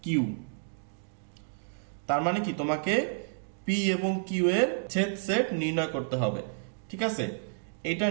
q। তার মানে কি, তোমাকে p এবং q এর ছেদ সেট নির্ণয় করতে হবে। ঠিক আছে, এটা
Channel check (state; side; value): silent; left; digital silence